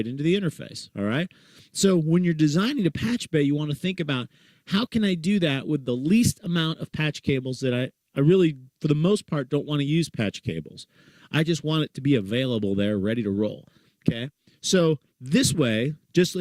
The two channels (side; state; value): both; identical; correlation 1.00